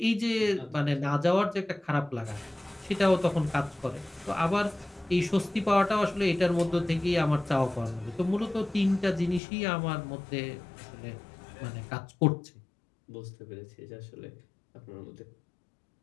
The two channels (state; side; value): drops out; right; at 9.4 s